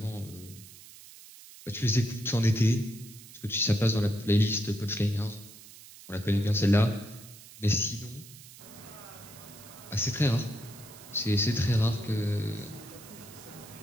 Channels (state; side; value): noise; right; hiss, 18 dB below the sound